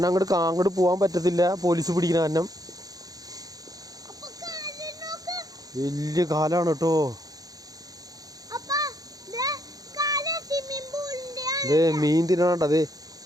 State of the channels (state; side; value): late; left; 0.18 ms